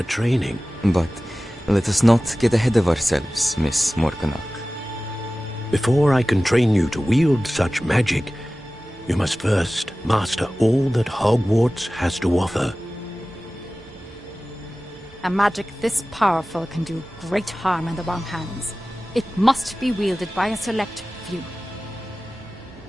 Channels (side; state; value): both; normal; correlation 0.97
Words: training. But let us not get ahead of ourselves, Miss Morganach. Before I can train you to wield such magic, you must first master all that Hogwarts has to offer. A magic this powerful can do great harm in the wrong hands. It must be wielded by a select few.